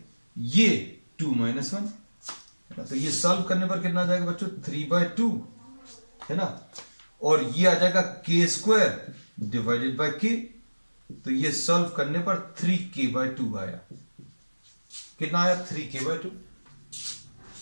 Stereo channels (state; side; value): inverted; both; correlation -1.00